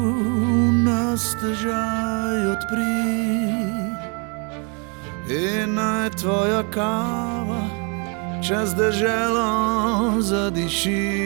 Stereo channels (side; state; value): left; quieter; 35.3 dB